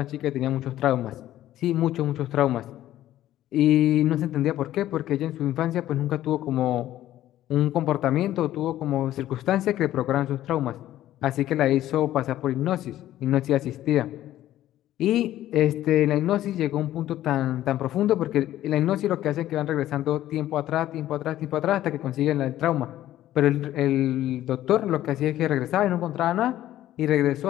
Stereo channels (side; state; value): right; quieter; 13.4 dB